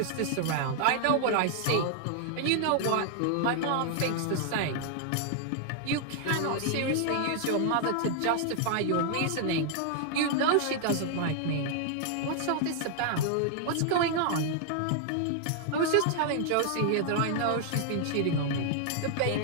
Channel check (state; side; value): different; both; correlation 0.00